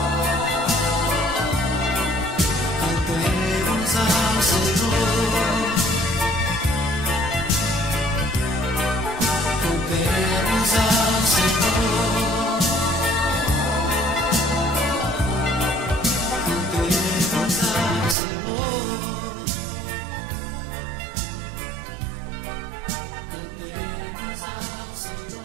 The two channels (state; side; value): drops out; left; at 18.2 s